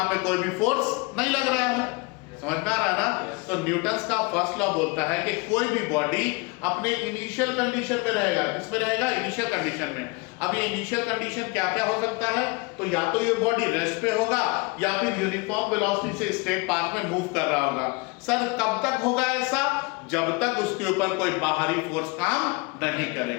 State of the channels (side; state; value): right; quieter; 27.3 dB